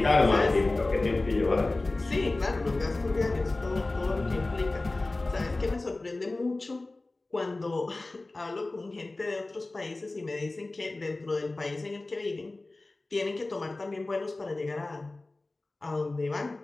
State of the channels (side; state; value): right; quieter; 3.0 dB